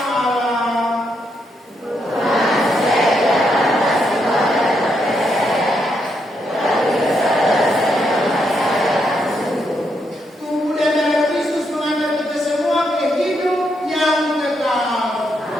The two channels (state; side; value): normal; both; correlation 0.79